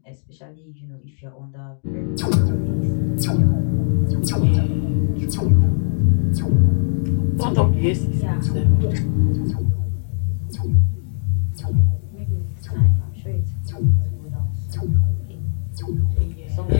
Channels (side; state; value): right; silent; digital silence